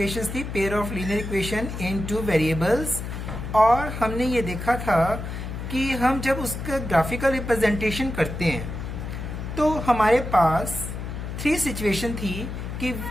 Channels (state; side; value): noise; left; hum, 7 dB below the sound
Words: थी, pair of linear equation in two variables, और हमने ये देखा था कि हम जब उसका ग्राफिकल रिप्रेजेंटेशन करते हैं तो हमारे पास थ्री सिचुएशन थी कि